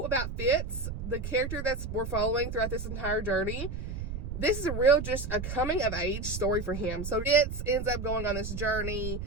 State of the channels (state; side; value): noise; right; rumble, 6 dB below the sound